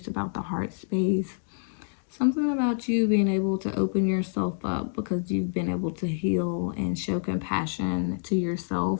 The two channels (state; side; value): silent; right; digital silence